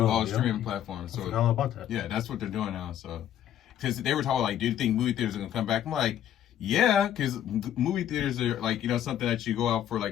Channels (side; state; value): right; quieter; 10.9 dB